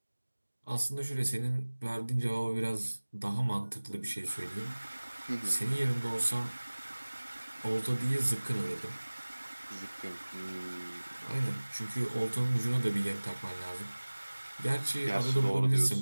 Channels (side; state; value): both; inverted; correlation -1.00